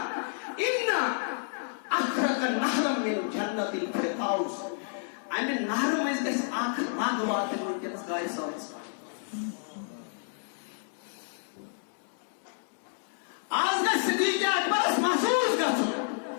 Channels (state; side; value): silent; right; digital silence